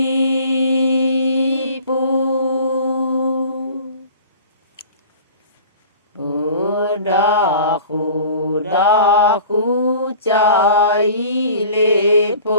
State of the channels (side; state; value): both; inverted; correlation -0.44